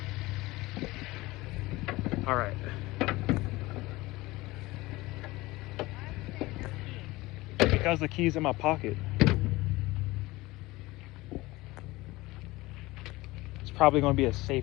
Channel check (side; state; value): right; quieter; 20.2 dB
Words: all right. Because the key's in my pocket. It's probably going to be a